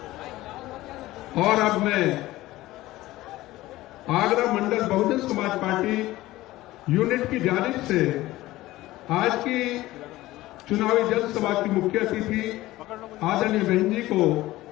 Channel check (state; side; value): quieter; right; 17.1 dB